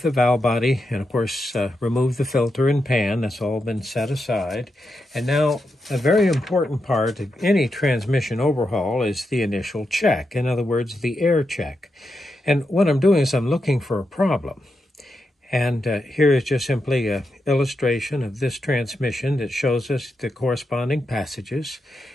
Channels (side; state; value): both; normal; correlation 0.86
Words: the valve body and, of course, removed the filter and pan. That's all been set aside. And now a very important part of any transmission overhaul is the initial check. In other words, the air check. And what I'm doing is I'm looking for a problem. And here is just simply an illustration of this transmission that shows us the corresponding passages.